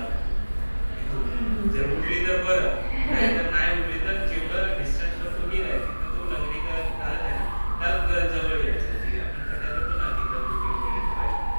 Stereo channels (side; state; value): both; inverted; correlation -1.00